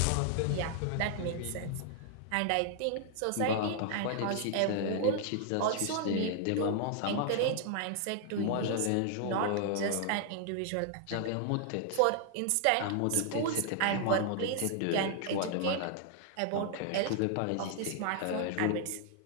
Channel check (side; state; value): both; different; correlation 0.00